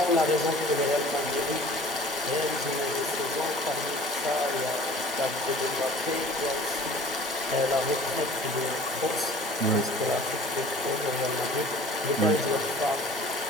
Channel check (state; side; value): normal; both; correlation 0.46